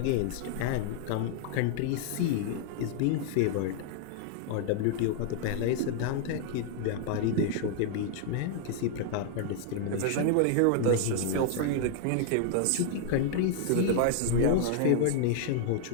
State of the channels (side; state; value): both; different; correlation 0.00